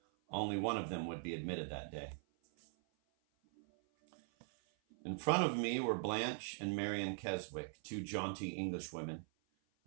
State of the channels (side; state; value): left; silent; 50 dB below the other